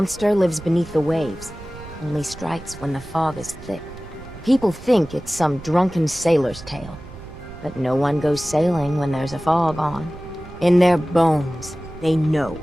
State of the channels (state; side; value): noise; right; rumble, 16 dB below the sound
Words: lives beneath the waves. Only strikes when the fog is thick. People think it's some drunken sailor's tale. But no one goes sailing when there's a fog on. In their bones, they know